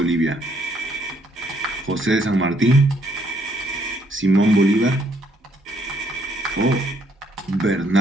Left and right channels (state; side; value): normal; both; correlation 0.69